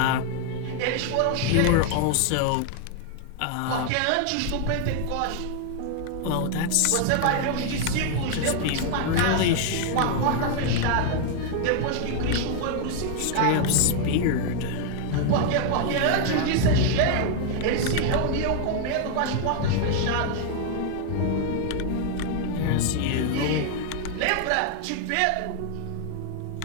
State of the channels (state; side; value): different; both; correlation 0.00